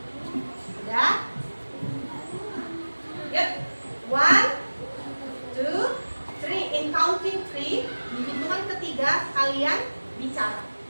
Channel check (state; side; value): inverted; both; correlation -1.00